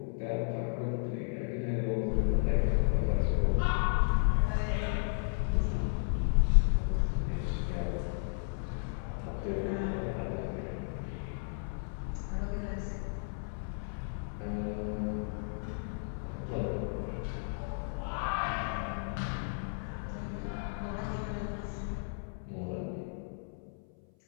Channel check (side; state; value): right; silent; 55 dB below the other